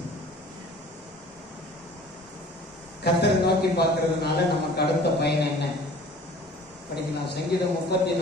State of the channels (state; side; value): normal; both; correlation 0.48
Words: கர்த்தரை நோக்கி பார்க்கறதுனால நமக்கு அடுத்த பயன் என்ன? படிக்கலாம். சங்கீதம்